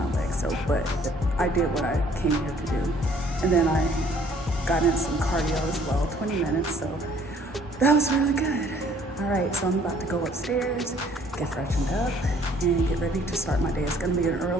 legs, but I did what I came here to do. And then I got in some cardio as well, 20 minutes, so that was really good. All right, so I'm about to go upstairs, get freshened up, and get ready to start my day. It's gonna be an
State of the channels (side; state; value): both; normal; correlation 0.59